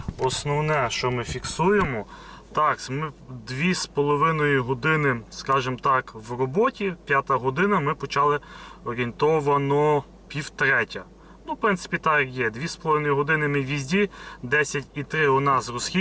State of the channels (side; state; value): both; identical; correlation 1.00